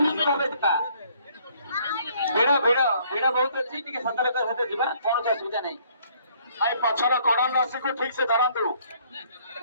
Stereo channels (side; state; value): both; inverted; correlation -0.62